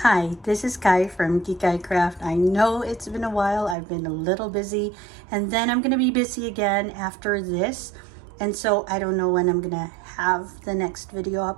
Hi, this is Kai from Kikai Craft. I know it's been a while. I've been a little busy, and then I'm going to be busy again after this. And so I don't know when I'm going to have the next video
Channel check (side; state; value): left; drops out; at 3.8 s